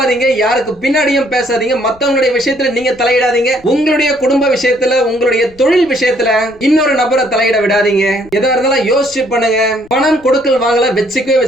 யாருக்கு பின்னாடியும் பேசாதீங்க, மத்தவங்களுடைய விஷயத்துல நீங்க தலையிடாதீங்க. உங்களுடைய குடும்ப விஷயத்துல, உங்களுடைய தொழில் விஷயத்துல இன்னொரு நபரை தலையிட விடாதீங்க. எதா இருந்தாலும் யோசிச்சு பண்ணுங்க. பணம் கொடுக்கல் வாங்கல வச்சுக்கவே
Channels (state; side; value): noise; left; rumble, 27 dB below the sound